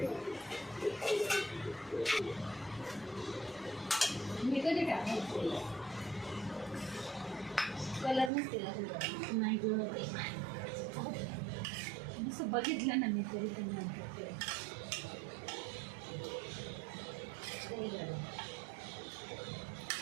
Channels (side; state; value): left; drops out; at 8.3 s